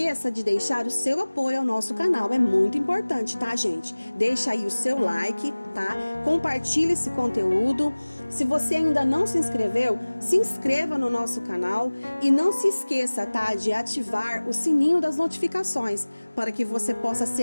de deixar o seu apoio ao nosso canal, é muito importante, tá, gente? Deixa aí o seu like, tá? Compartilhe esse conteúdo. Se você ainda não se inscreveu, se inscreva no nosso canal e não se esqueça, tá, de ativar o sininho das notificações para que você possa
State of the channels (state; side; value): inverted; both; correlation -1.00